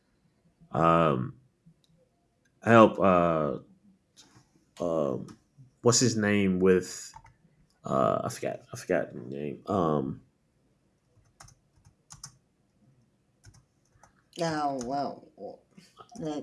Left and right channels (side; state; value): both; identical; correlation 1.00